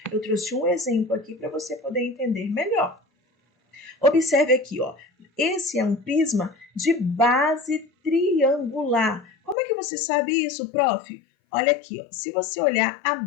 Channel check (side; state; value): right; drops out; at 9.6 s